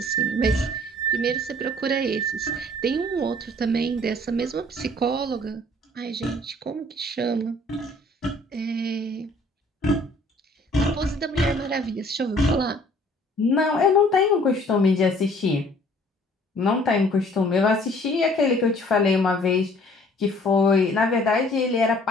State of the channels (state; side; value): normal; both; correlation 0.55